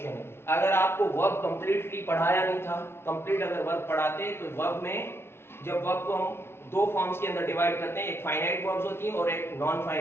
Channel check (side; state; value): right; late; 0.12 ms